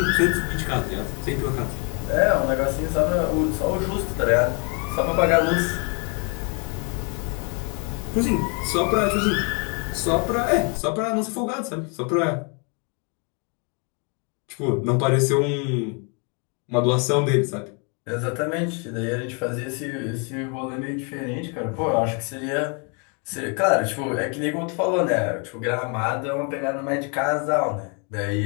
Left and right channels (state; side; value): quieter; right; 35.6 dB